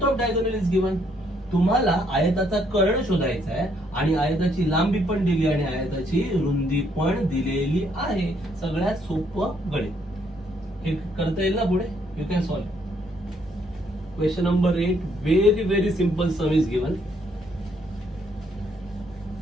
of diagonal is given. तुम्हाला आयताचा कर्ण शोधायचा आहे आणि आयताची लांबी पण दिली आणि आयताची रुंदी पण दिलेली आहे. सगळ्यात सोपं गणित. हे करता येईल ना पुढे? You can solve. Question number 8, very very simple sum is given.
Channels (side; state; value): both; normal; correlation 0.70